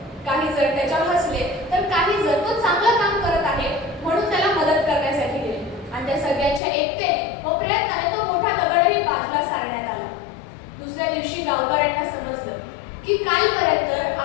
काही जण त्याच्यावर हसले तर काही जण तो चांगलं काम करत आहे म्हणून त्याला मदत करण्यासाठी गेले आणि त्या सगळ्यांच्या एकतेने व प्रयत्नाने तो मोठा दगडही बाजूला सारण्यात आला. दुसऱ्या दिवशी गावकऱ्यांना समजलं की कालपर्यंत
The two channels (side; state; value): right; drops out; at 6.6 s